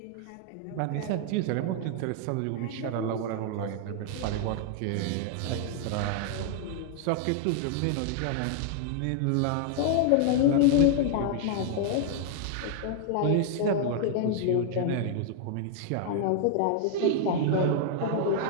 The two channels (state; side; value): different; both; correlation 0.00